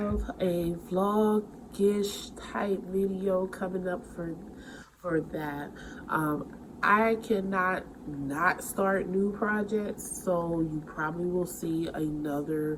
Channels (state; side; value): identical; both; correlation 1.00